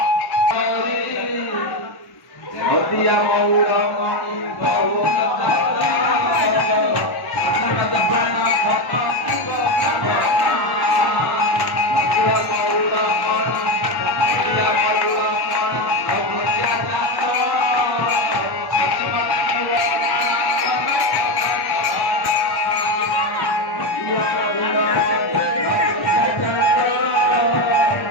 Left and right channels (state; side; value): late; right; 1.1 ms